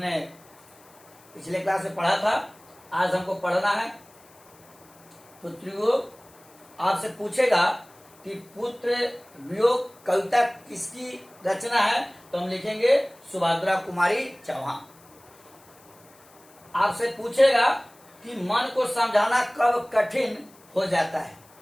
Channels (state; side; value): noise; left; hiss, 27 dB below the sound